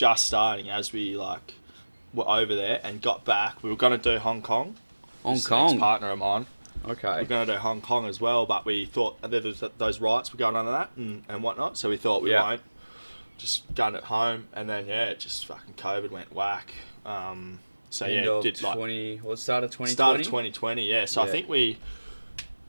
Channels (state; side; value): inverted; both; correlation -1.00